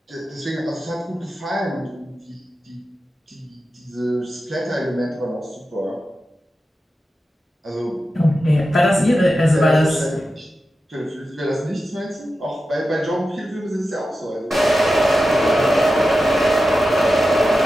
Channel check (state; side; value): normal; both; correlation 0.92